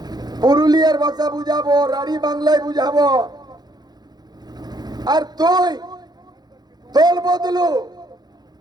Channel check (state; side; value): late; left; 0.20 ms